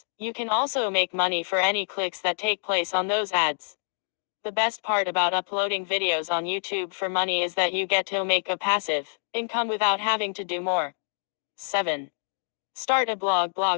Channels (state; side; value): silent; right; digital silence